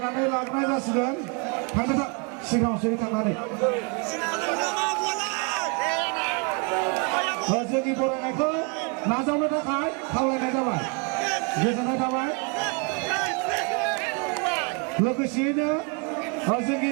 लाबोनाय जासिगोन थांनो सिगाङावसो थांनानै जोंनि बरायनायखौ नाजावनो थाखाय खावलायनाय जाबाय गोजोननाय थाबाय लोगोसेयैनो जोंनि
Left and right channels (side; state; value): left; quieter; 34.2 dB